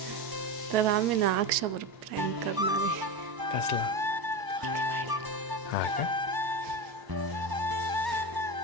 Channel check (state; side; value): late; left; 1.0 ms